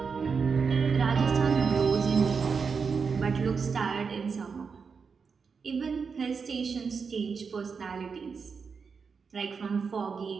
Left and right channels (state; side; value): quieter; left; 5.5 dB